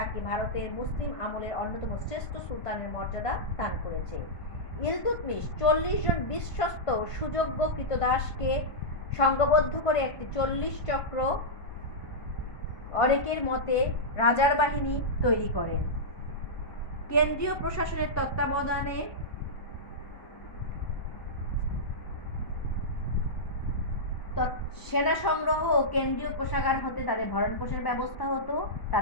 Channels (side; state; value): right; late; 1.5 ms